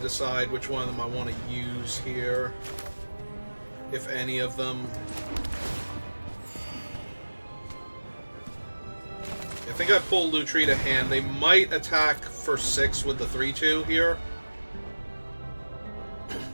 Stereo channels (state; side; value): inverted; both; correlation -1.00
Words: which one of them I want to use here. If any of them. I think I pull Lutri to hand. They might attack for 6 with the 3-2 here.